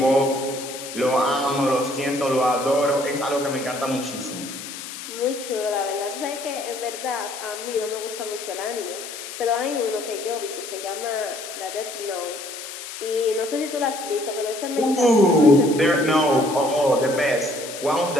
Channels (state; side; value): noise; left; hiss, 10 dB below the sound